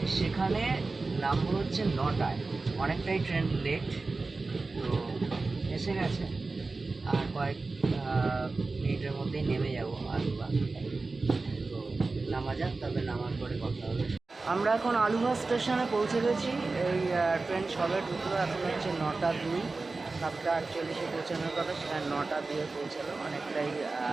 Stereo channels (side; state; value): left; quieter; 3.7 dB